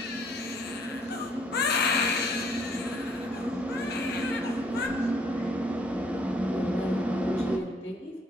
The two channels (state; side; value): normal; both; correlation 0.63